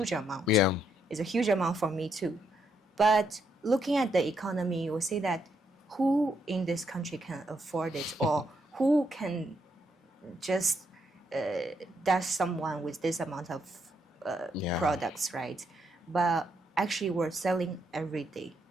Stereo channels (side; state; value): both; normal; correlation 0.76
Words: amount. Yeah. It's a huge amount for me too. But looking at the economy, you will say that who in this country can afford it, or who can just dash someone with this amount of products, right? But actually, we're selling every day,